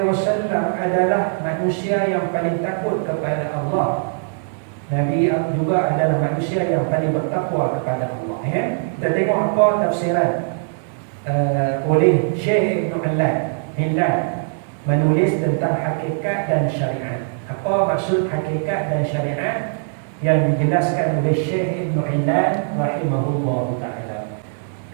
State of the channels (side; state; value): left; silent; 65 dB below the other